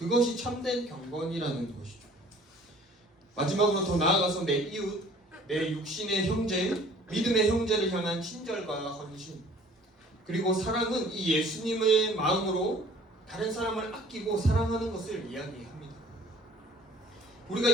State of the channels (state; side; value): normal; both; correlation 0.52